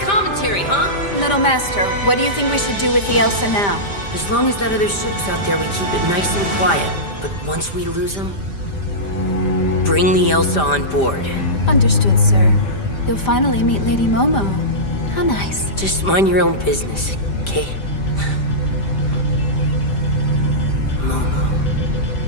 commentary, huh? Little master, what do you think we should do with the Elsa now? As long as that other ship's out there, we keep it nice and quiet. But once we lose them, bring the Elsa on board. Understood, sir. You'll finally meet Lady Momo. How nice. Just mind your own business, okay? Momo.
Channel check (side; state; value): right; late; 5.0 ms